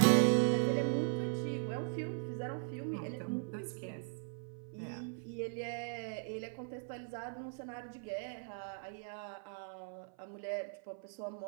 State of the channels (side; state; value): left; silent; 52 dB below the other